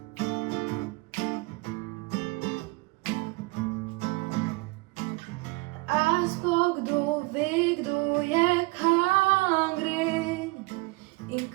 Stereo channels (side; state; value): left; quieter; 25.4 dB